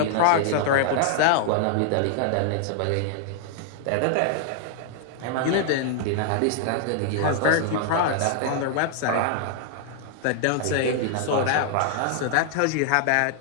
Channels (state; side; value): different; both; correlation 0.00